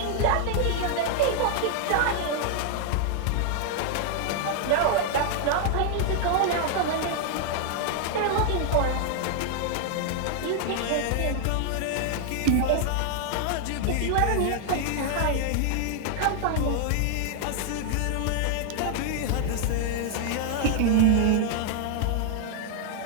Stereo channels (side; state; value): both; different; correlation 0.00